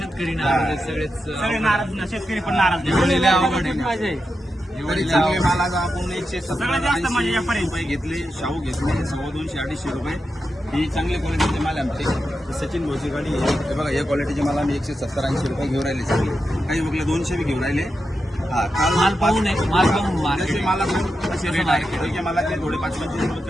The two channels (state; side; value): normal; both; correlation 0.88